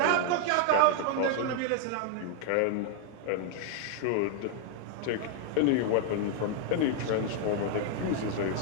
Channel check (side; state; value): both; different; correlation 0.00